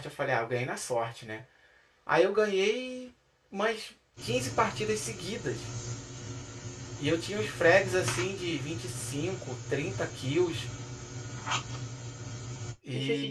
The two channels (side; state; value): both; identical; correlation 1.00